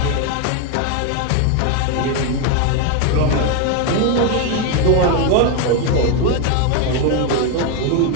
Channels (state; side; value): different; both; correlation 0.01